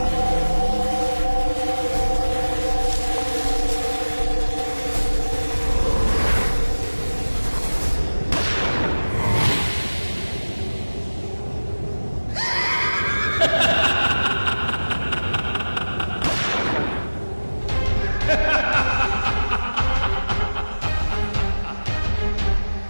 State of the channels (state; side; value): inverted; both; correlation -1.00